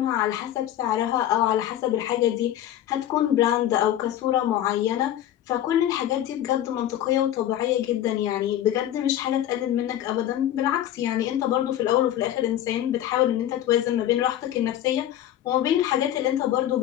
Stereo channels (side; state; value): right; quieter; 11.9 dB